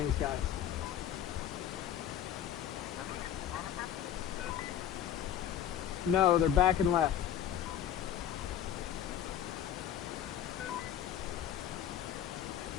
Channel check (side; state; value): right; quieter; 10.2 dB